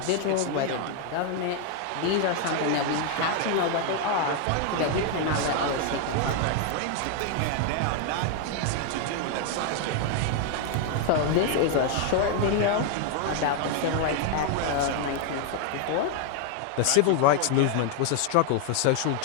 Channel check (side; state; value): both; different; correlation 0.00